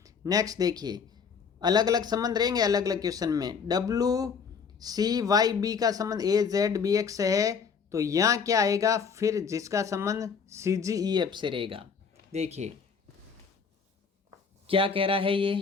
नेक्स्ट देखिए, अलग अलग संबंध रहेंगे अलग अलग क्वेश्चन में। WCYB का संबंध AZBX से है, तो यहाँ क्या आएगा फिर जिसका संबंध CGEF से रहेगा? देखिए क्या कह रहा है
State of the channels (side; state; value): right; quieter; 6.0 dB